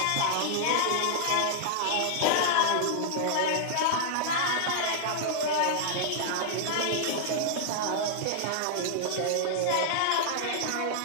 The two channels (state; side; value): different; both; correlation -0.01